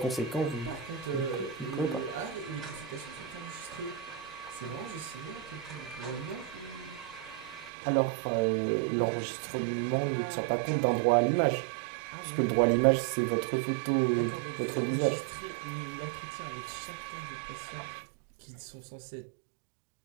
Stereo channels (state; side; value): drops out; left; at 7.7 s